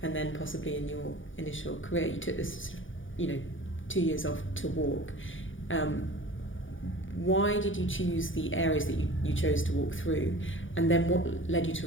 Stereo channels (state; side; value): late; right; 0.57 ms